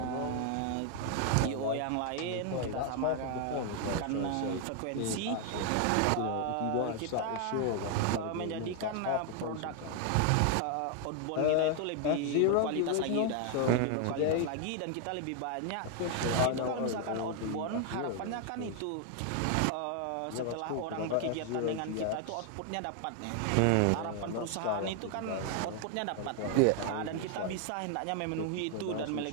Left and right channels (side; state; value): both; different; correlation 0.00